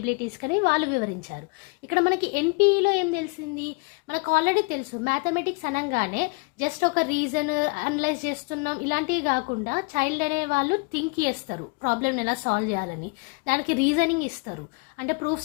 కని వాళ్ళు వివరించారు. ఇక్కడ మనకి NPEలో ఏం తెలిసింది, మనకు ఆల్రెడీ తెలుసు మ్యాథమెటిక్స్ అనగానే జస్ట్ ఒక రీజన్ అనలైజ్ చేస్తున్నాం ఇలాంటివి కాకుండా చైల్డ్ అనే వాళ్ళు థింక్ చేస్తారు, ప్రాబ్లమ్ని ఎలా సాల్వ్ చేయాలని, దానికి రీజనింగ్ ఇస్తారు. అంటే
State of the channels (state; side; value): quieter; right; 30.2 dB